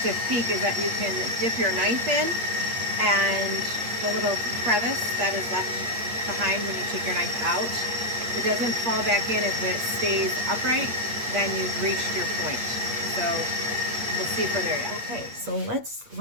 peak is that you can dip your knife in, and the little crevice that is left behind when you take your knife out, it doesn't fall back in if it stays upright. Then you've reached your point. So we'll see if we're there yet. Okay, so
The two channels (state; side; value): late; left; 8.5 ms